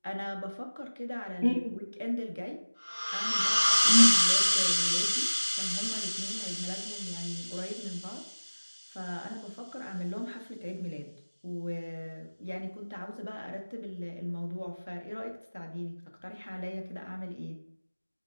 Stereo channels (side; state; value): both; inverted; correlation -1.00